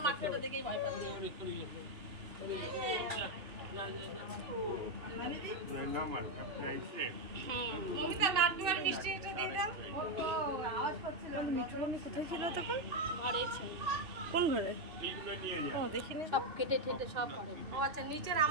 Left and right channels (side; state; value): left; late; 2.6 ms